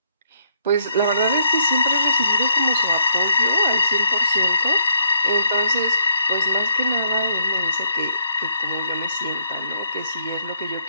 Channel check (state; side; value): inverted; both; correlation -0.72